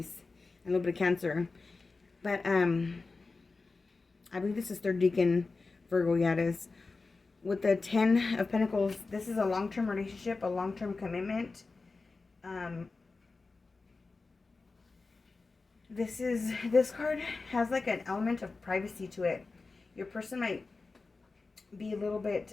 and a little bit of Cancer. But I believe this is third decan Virgo. Yeah, it is. With the 10 of Pentacles, this is a long-term relationship, a long-term commitment. This card has like an element of privacy to it. Your person might be a little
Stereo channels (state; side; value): quieter; right; 3.9 dB